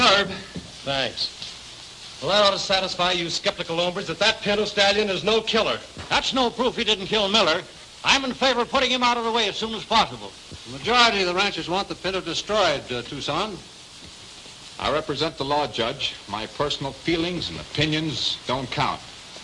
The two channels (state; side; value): identical; both; correlation 1.00